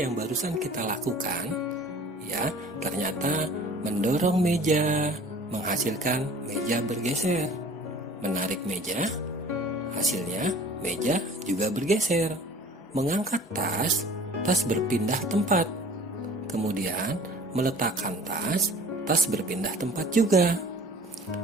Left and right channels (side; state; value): both; normal; correlation 0.47